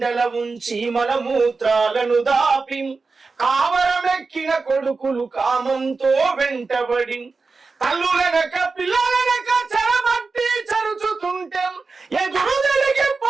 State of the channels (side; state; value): left; quieter; 4.2 dB